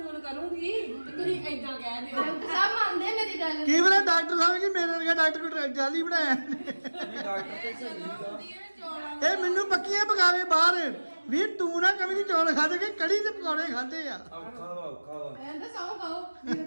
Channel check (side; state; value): both; inverted; correlation -1.00